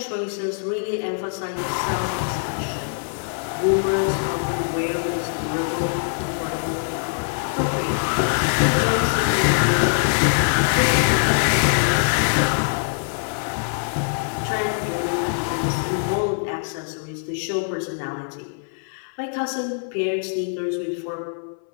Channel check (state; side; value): silent; right; 60 dB below the other